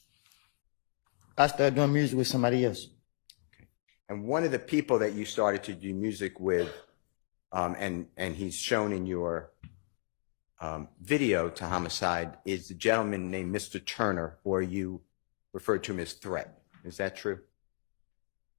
I started doing music with somebody else. Okay. And one of the people that you started to do music with, and he's shown in your video to Homicide, is a gentleman named Mr. Turner, or you referred to him as Threat. Is that true?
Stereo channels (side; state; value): right; silent; digital silence